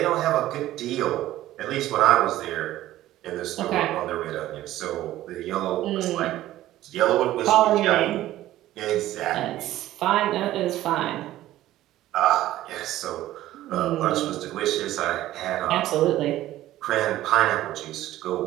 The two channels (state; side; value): quieter; left; 14.6 dB